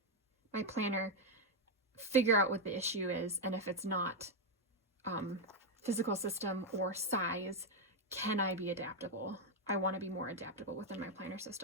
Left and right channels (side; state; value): both; normal; correlation 0.02